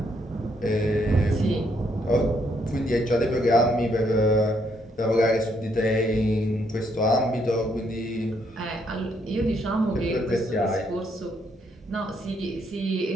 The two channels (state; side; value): normal; both; correlation 0.72